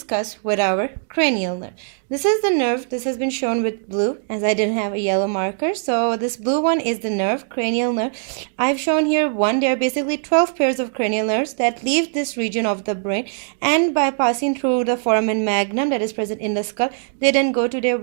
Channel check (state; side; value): silent; left; digital silence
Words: with our cranial nerve. This is the nerve. This has been shown with blue as I didn't have a yellow marker. So this blue one is the nerve, cranial nerve. I've shown here one. There are basically 12 pairs of cranial nerves that leave this region of the brain, and by passing through the foramen magnum that is present in the skull, they then go to their